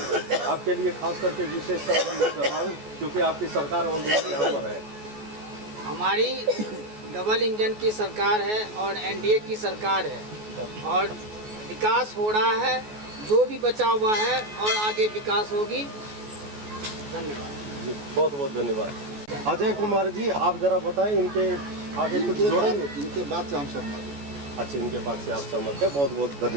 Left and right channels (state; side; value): late; left; 14 ms